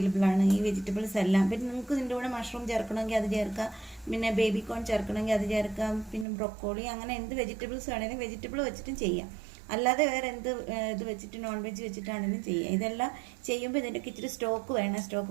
ആണ്, ഈ വെജിറ്റബിൾസ് എല്ലാം. പിന്നെ നിങ്ങൾക്ക് ഇതിൻ്റെ കൂടെ മഷ്റൂം ചേർക്കണമെങ്കിൽ അത് ചേർക്കാം, പിന്നെ ബേബി കോൺ ചേർക്കണമെങ്കിൽ അത് ചേർക്കാം, പിന്നെ ബ്രൊക്കോളി, അങ്ങനെ എന്ത് വെജിറ്റബിൾസ് വേണമെങ്കിലും വെജിറ്റബിൾ വെച്ചിട്ടും ചെയ്യാം. അല്ലാതെ വേറെ എന്ത് ഇത് വെച്ചിട്ട് നോൺ വെജ് വെച്ചിട്ടാണെങ്കിലും ചെയ്യാം. ഇതെല്ലാം ചെയ്യുമ്പോൾ ഇതിൻ്റെയൊക്കെ ഇച്ചിരി സ്റ്റോക്ക് വേണം.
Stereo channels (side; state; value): left; drops out; at 6.2 s